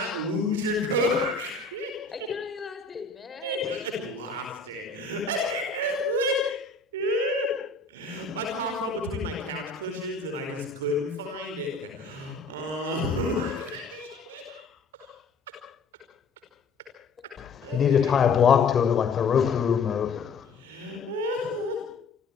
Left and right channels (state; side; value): quieter; right; 4.3 dB